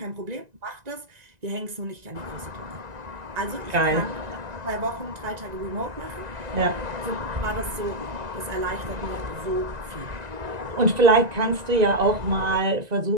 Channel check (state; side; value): late; left; 1.9 ms